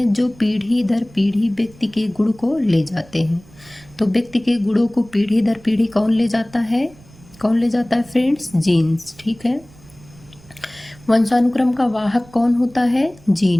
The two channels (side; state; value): right; noise; rumble, 24 dB below the sound